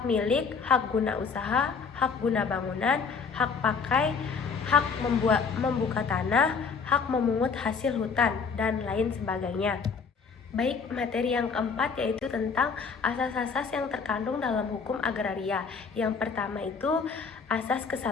milik, hak guna usaha, hak guna bangunan, hak pakai, hak membuka tanah, hak memungut hasil hutan, dan lain sebagainya. Baik, materi yang keempat yaitu tentang asas-asas yang terkandung dalam hukum agraria. Yang pertama itu asas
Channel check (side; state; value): right; quieter; 5.4 dB